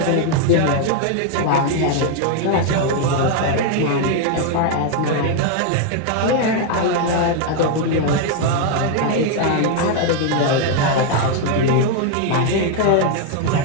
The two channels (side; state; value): both; different; correlation 0.00